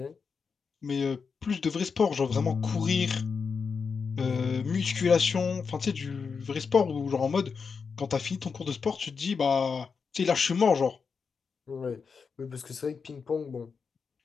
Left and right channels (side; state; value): right; quieter; 5.5 dB